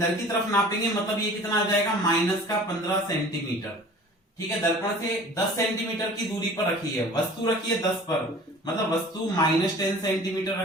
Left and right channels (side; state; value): both; normal; correlation 0.45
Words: की तरफ नापेंगे, मतलब ये कितना आ जाएगा -15 सेंटीमीटर। ठीक है, दर्पण से 10 सेंटीमीटर की दूरी पर रखी है, वस्तु रखी है 10 पर, मतलब वस्तु -10 सेंटीमीटर